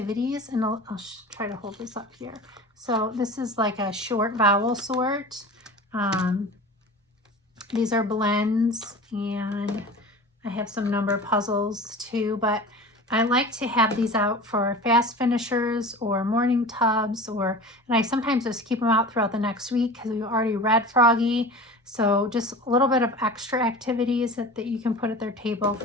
and I'll try to hold this up here. So this is like a short vowel sort. These are blends, and I have some number puzzles too, but I like to have these out for fast finishers or morning tubs, and I sometimes just keep them out throughout the next week because we've already read Froggy. So just a little bit of extra activities that you can put at their table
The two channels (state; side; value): normal; both; correlation 0.36